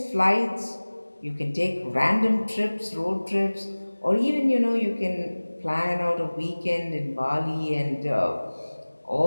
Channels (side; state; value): both; inverted; correlation -1.00